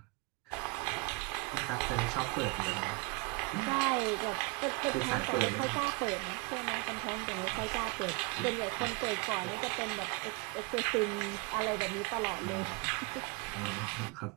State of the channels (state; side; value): quieter; left; 28.8 dB